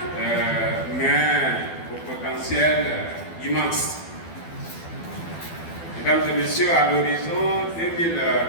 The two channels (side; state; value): right; late; 12 ms